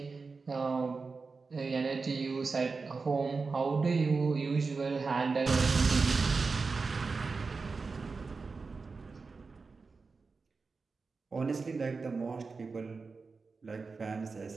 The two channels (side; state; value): left; quieter; 4.4 dB